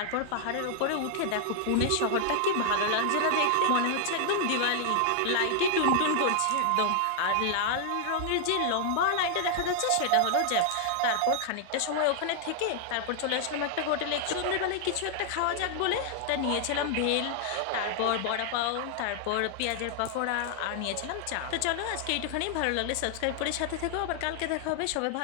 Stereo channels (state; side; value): different; both; correlation 0.00